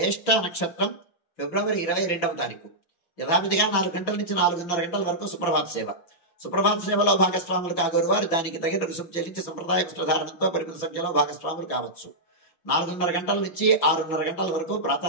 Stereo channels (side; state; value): right; late; 5.9 ms